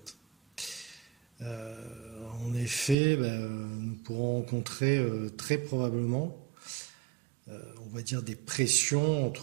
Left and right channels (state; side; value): drops out; left; at 3.0 s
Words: En effet, nous pourrons rencontrer très probablement on va dire des pressions